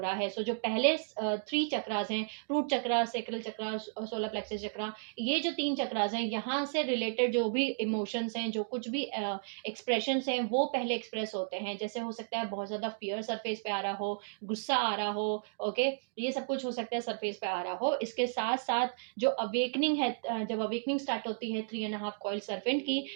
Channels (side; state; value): left; silent; digital silence